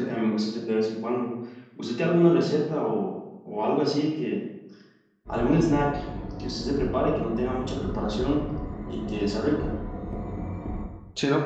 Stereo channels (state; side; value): identical; both; correlation 1.00